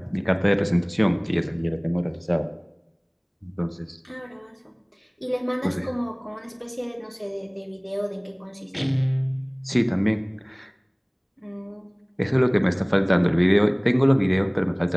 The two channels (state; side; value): identical; both; correlation 1.00